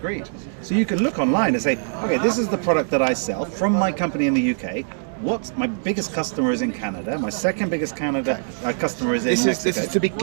So you can look online and say, okay, this is the product that I sell from my company in the UK. What my biggest customer is in Canada. My second biggest customer is in Mexico. This is to be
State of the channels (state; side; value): silent; left; digital silence